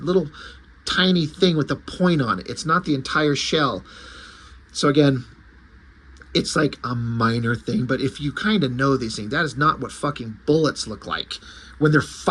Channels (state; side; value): identical; both; correlation 1.00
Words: tiny thing with a point on it. It's not the entire shell. So again, it's like a minor thing, but if you kind of know these things, that is not what fucking bullets look like when they're